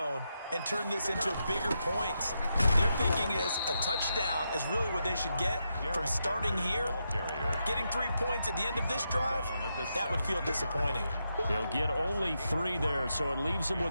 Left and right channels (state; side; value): inverted; both; correlation -0.84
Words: and turn this into bigger points. Their thinking is a touchdown is really what they should get from starting here. Getting 3 points at the end of this drive, that would feel disappointing. He'll get only 3 there, so it leaves him